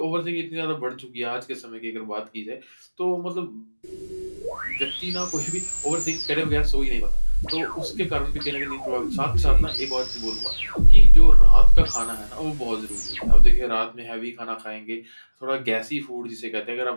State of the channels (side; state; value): both; inverted; correlation -1.00